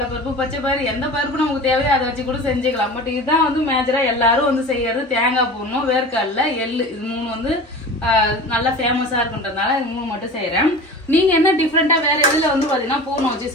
பருப்பு, பச்சை பயிறு, எந்த பருப்பு நமக்கு தேவையோ அதை வச்சு கூட செஞ்சுக்கலாம். பட் இதுதான் வந்து மேஜரா எல்லாரும் வந்து செய்யறது. தேங்காய் பூர்ணம், வேர்க்கடலை, எள்ளு, இது 3 வந்து நல்லா ஃபேமஸா இருக்குன்றதுனால இது 3 மட்டும் செய்யறேன். நீங்க என்ன டிஃபரெண்டா வேற எதுல வந்து பாத்தீங்கன்னா பூர்ணம் வச்சு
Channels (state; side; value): normal; both; correlation 0.35